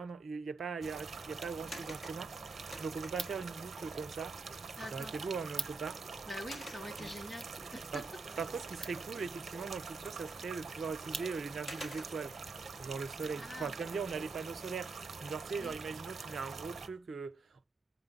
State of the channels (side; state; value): left; quieter; 3.9 dB